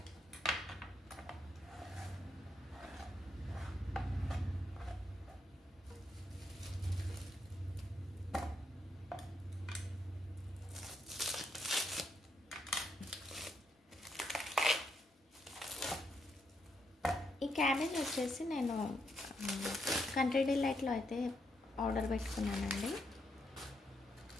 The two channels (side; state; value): both; normal; correlation 0.78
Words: ఈ క్యాబేజ్ వచ్చేసి నేను కంట్రీ డిలైట్లో అయితే ఆర్డర్ పెట్టుకున్నానండి.